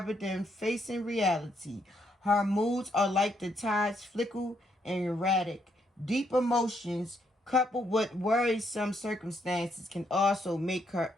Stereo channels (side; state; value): both; normal; correlation 0.75